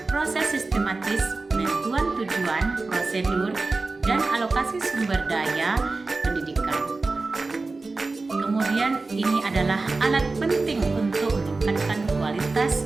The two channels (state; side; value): quieter; left; 3.6 dB